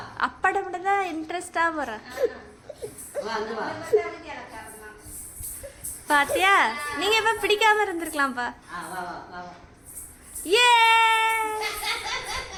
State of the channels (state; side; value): identical; both; correlation 1.00